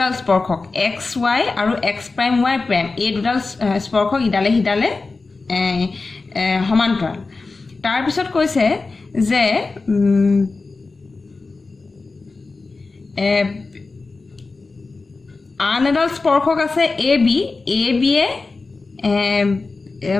স্পৰ্শক xy আৰু x', এই দুডাল স্পৰ্শক ইডালে হিডালে সমান্তৰাল তাৰ পিছত কৈছে যে আন এডাল স্পৰ্শক আছে AB এ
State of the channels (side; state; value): right; quieter; 3.8 dB